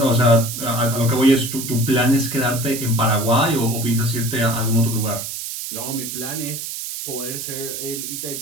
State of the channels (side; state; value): right; noise; hiss, 6 dB below the sound